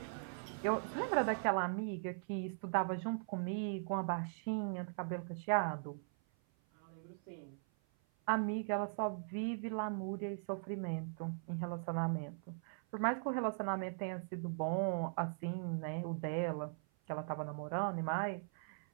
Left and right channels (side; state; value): left; silent; 51 dB below the other